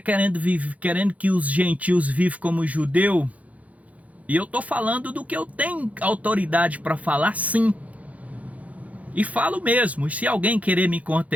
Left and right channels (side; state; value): left; late; 0.069 ms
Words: que os gentios vivam como judeu, e eu estou falando do que eu tenho autoridade para falar, sim. E falo mesmo. E se alguém querer me